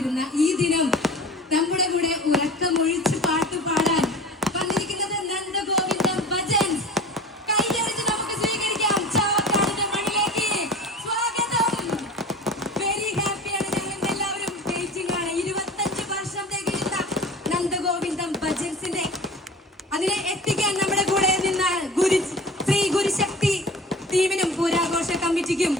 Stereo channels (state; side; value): normal; both; correlation 0.38